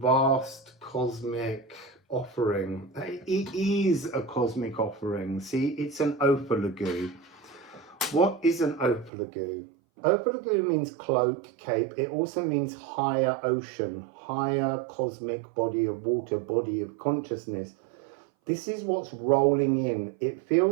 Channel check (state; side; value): drops out; left; at 9.1 s